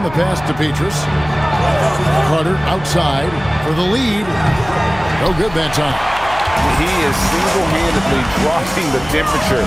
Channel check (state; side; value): noise; left; hum, 15 dB below the sound